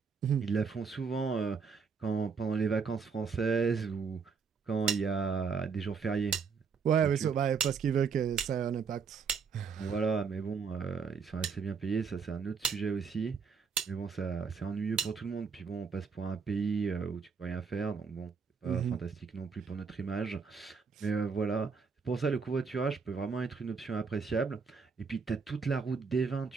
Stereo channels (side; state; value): left; quieter; 5.6 dB